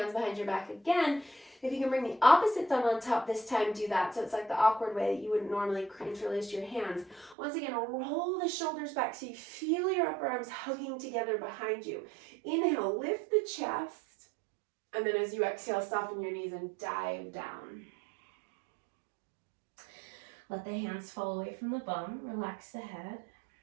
behind your back again. If you can bring the opposite thumb on top this time, do that. So it's like the awkward way that you wouldn't normally interlace your hands. Once again, roll the shoulders back so you feel your upper arms hugging together behind you. Inhale, lift the chest. And then as you exhale, soften your knees and dive down. Let the hands fall away from the bum. Relax the head.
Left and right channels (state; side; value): drops out; left; at 7.4 s